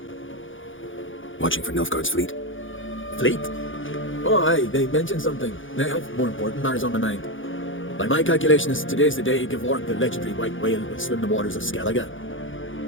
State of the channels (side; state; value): right; late; 0.57 ms